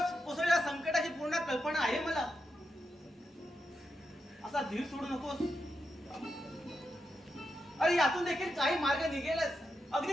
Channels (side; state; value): both; normal; correlation 0.86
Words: कोसळलेल्या संकटाची पूर्ण कल्पना आहे मला. असा धीर सोडू नकोस. अरे यातून देखील काही मार्ग निघेलच.